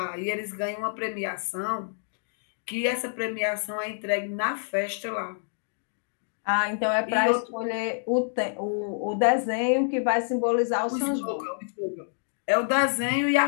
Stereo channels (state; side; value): silent; right; digital silence